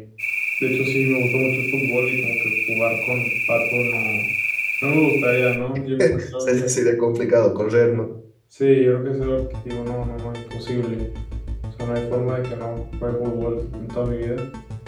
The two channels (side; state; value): both; identical; correlation 1.00